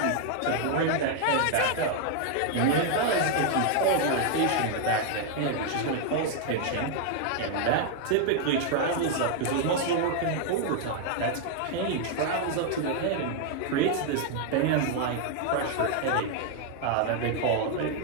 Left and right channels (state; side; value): different; both; correlation 0.00